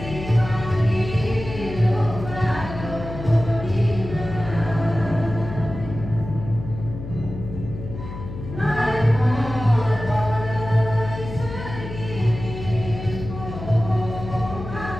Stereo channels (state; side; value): noise; left; hum, 9 dB below the sound